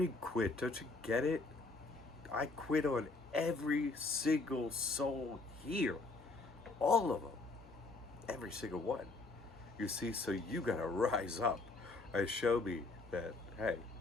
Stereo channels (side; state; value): right; quieter; 3.5 dB